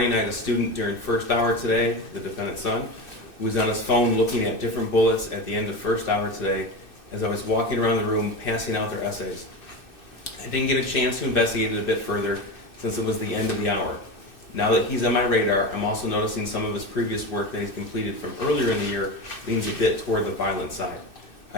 I had a student during first hour today," the defendant's son, "who was on his phone looking at different bullets at the end of first hour today as I was walking around the room passing out their essays. I didn't get a chance to investigate it a bit further since it was the end of the hour. Now that he's on my radar, I'm also noticing some of his previous work that he's completed from earlier in the year leans a bit toward the violent side.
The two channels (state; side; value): late; right; 2.6 ms